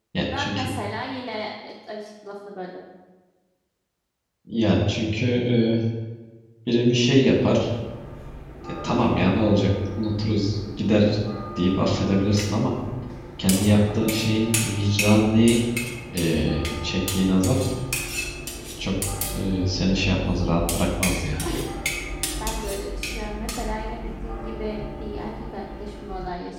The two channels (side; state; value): both; identical; correlation 1.00